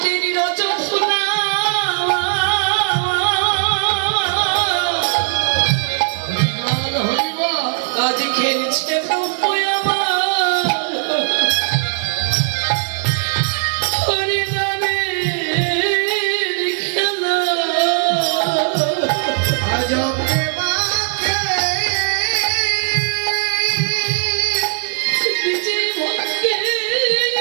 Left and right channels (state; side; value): silent; left; digital silence